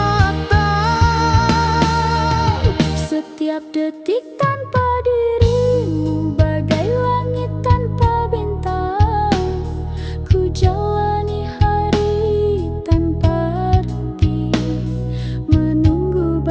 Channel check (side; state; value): both; identical; correlation 1.00